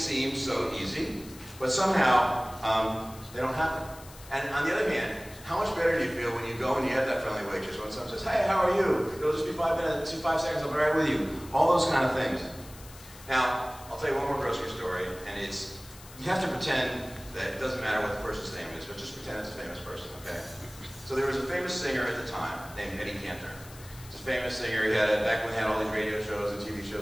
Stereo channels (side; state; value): left; noise; hiss, 19 dB below the sound